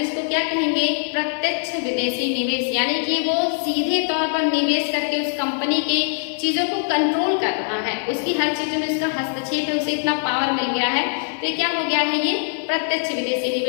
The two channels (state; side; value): silent; right; digital silence